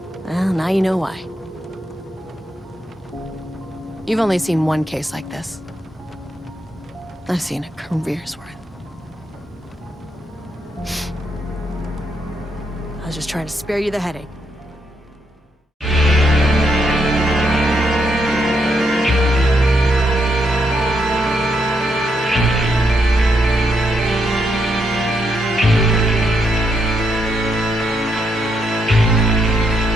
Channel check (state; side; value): normal; both; correlation 0.79